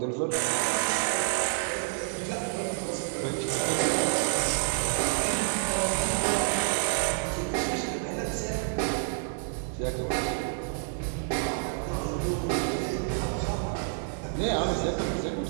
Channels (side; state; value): left; silent; digital silence